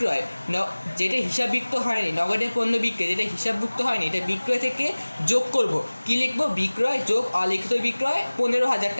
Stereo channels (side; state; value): both; inverted; correlation -1.00